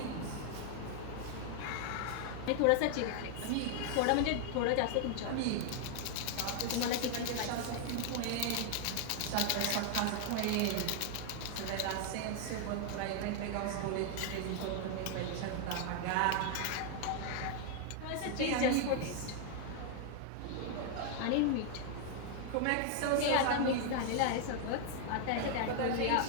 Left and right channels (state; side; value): different; both; correlation 0.00